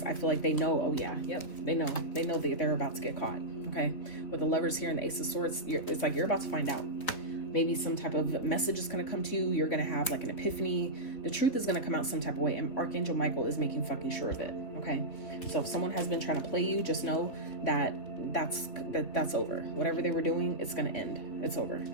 I feel like they know. Oh yeah, yep, they know that they're about to get caught. Okay, with the Lovers here and the Ace of Swords, it's like you're about to find out. Maybe some type of message is going to come to you. You're going to have like an epiphany. The truth is going to come out some type of way, and Archangel Michael is making fucking sure of it. Okay, so if someone has been trying to play you, just know that that's over. Whatever they were doing, it's going to end. It's over.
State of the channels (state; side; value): late; right; 4.0 ms